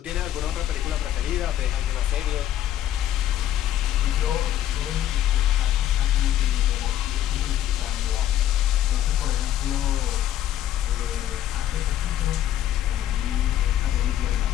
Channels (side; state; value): right; quieter; 11.7 dB